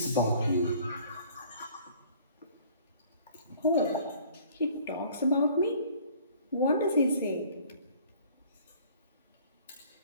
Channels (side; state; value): both; inverted; correlation -0.54